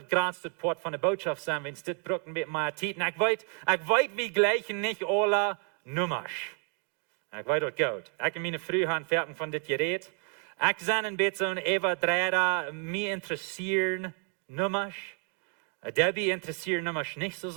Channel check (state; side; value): quieter; left; 38.5 dB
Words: das größte Part von der Botschaft sein, wenn es das brücken mit meiner Zeit. Ich weiß, wir gleichen nicht alle Nummers. Ich weiß das gut. Ich habe meine Frühhand fertig von das Gerät. Ich bin ein bisschen überdreht, mich interessieren Nummers. Debbie interessiert Nummers nicht so